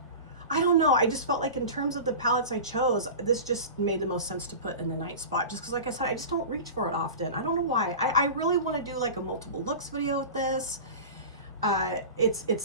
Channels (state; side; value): inverted; both; correlation -0.32